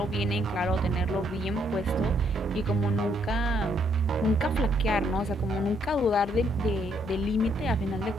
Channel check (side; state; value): both; normal; correlation 0.72